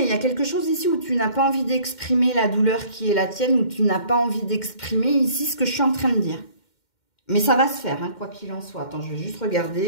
Il y a quelque chose ici où tu n'as pas envie d'exprimer la douleur qui est la tienne, où tu n'as pas envie d'exprimer ici ce que je suis en train de dire. Mais ça va se faire, hein, quoi qu'il en soit. Attends, je vais juste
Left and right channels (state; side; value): late; right; 2.1 ms